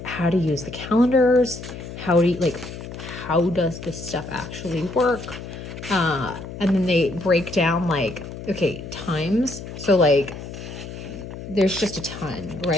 how to use the calendars. How does this stuff actually work? And then they break down like, okay, times. So like, there's just a ton,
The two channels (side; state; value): left; noise; hum, 11 dB below the sound